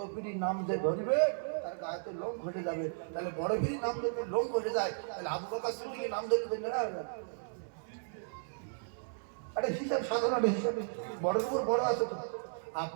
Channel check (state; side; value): silent; left; digital silence